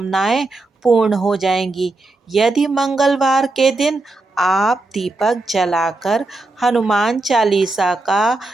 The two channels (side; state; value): left; quieter; 3.1 dB